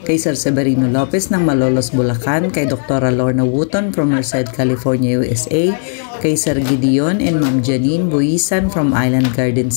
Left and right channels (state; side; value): silent; right; digital silence